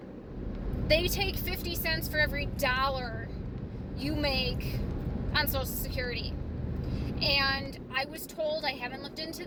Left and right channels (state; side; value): identical; both; correlation 1.00